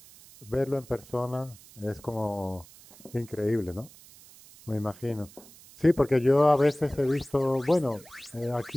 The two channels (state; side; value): noise; right; hiss, 22 dB below the sound